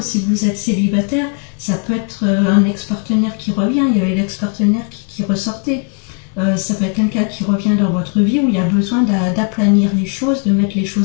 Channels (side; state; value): right; quieter; 38.3 dB